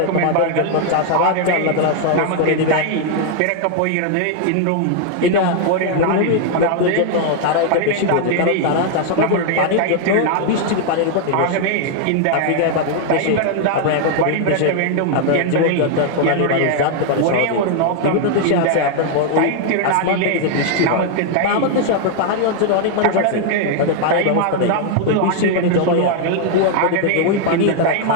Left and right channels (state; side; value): different; both; correlation 0.00